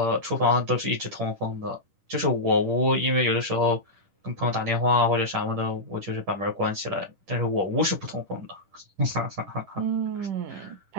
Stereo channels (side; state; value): left; late; 10 ms